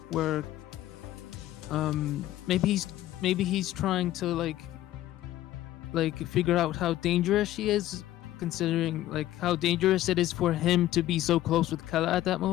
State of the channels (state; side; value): quieter; right; 14.3 dB